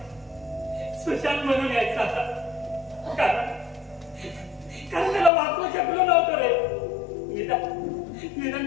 सुशांत म्हणून यायचा आता. कारण त्याला वाचवू शकलो नव्हतं रे.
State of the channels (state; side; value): drops out; right; at 5.3 s